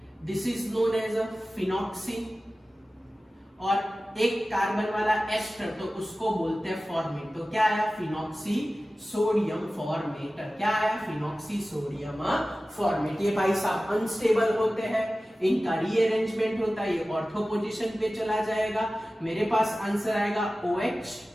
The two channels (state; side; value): normal; both; correlation 0.96